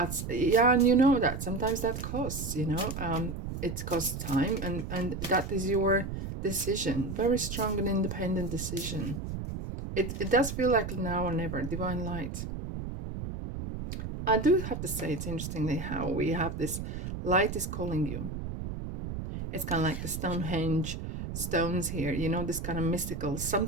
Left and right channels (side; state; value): right; noise; rumble, 6 dB below the sound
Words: yeah, and you know that sometimes that costs, you know, it costs time, and that is your decision, very strong and independent decision. It does feel like now or never, divine light. I do have to say, it's interestingly how we have this light is calling you. It's kind of like the Stonehenge stones here, you know, this kind of mystical,